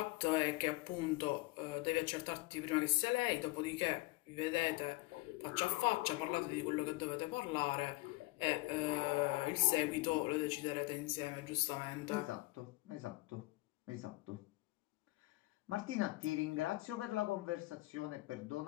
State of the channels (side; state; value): right; quieter; 22.1 dB